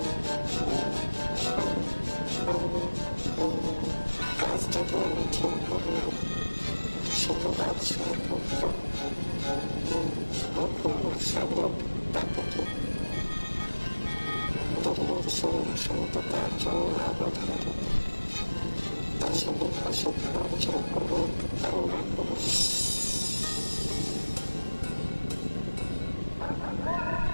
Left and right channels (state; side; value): inverted; both; correlation -1.00